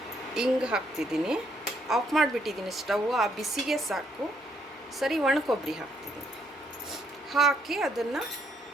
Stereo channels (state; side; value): normal; both; correlation 0.71